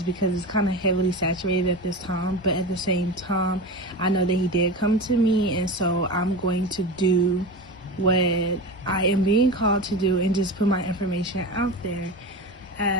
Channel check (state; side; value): normal; both; correlation 0.26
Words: because it's kind of heavily saturated at this time. But at the same time, I know that he did come to me, and so I'm going to do what I am being called to do and just put my information out there,